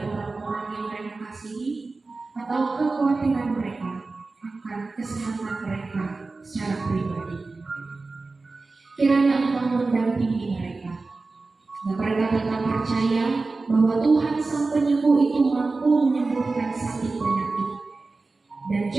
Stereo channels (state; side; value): quieter; left; 3.7 dB